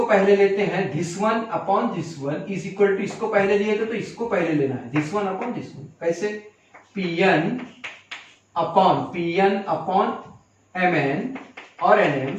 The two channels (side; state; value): both; identical; correlation 1.00